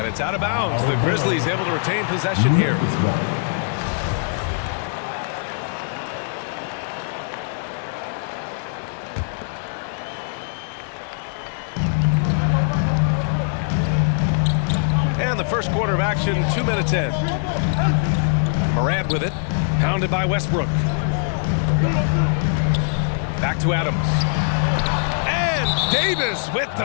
it's out of bounds. The Grizzlies able to retain possession here. And the first quarter of action, 2 minutes in. Morant with it. Pounded by Westbrook. Back to Adams. And Davis with the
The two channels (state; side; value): silent; right; digital silence